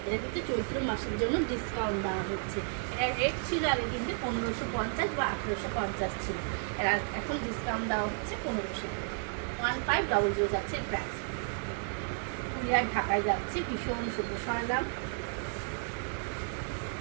এটা কিন্তু চৈত্র মাসের জন্য ডিসকাউন্ট দেওয়া হচ্ছে। এটা রেট ছিল আগে কিন্তু 1550 বা 1850 ছিল, এরা এখন ডিসকাউন্ট দেওয়া হচ্ছে 1500। 1500 যাচ্ছে প্রাইস। কুরিয়ার ঢাকায় যাচ্ছে, ভীষণ সুন্দর। সরলাম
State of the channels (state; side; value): silent; left; 55 dB below the other